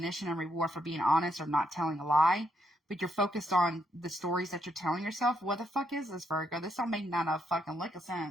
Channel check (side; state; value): both; normal; correlation 0.76